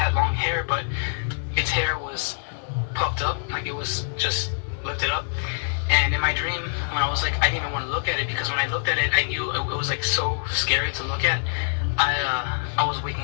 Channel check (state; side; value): silent; right; 62 dB below the other